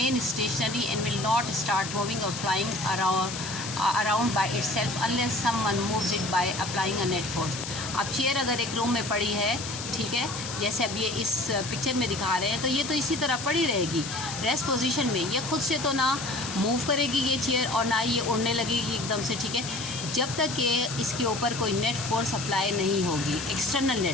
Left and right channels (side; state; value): left; noise; hiss, 8 dB below the sound